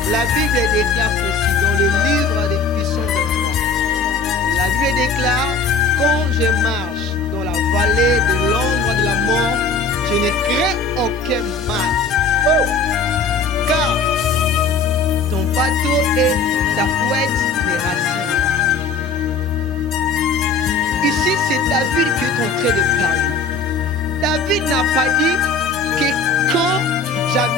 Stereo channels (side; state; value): right; quieter; 4.0 dB